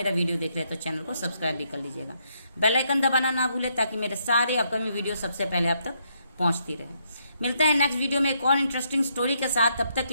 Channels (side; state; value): both; inverted; correlation -0.75